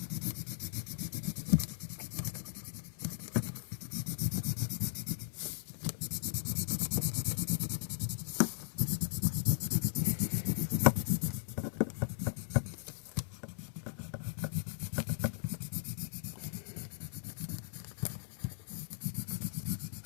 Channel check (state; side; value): silent; right; digital silence